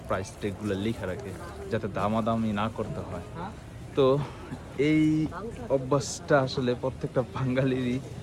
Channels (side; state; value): both; identical; correlation 1.00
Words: প্রাইস ট্যাগগুলো লেখা রাখে যাতে দামাদামি না করতে হয়। তো এই অভ্যাসটা আসলে প্রত্যেকটা বাঙালিরই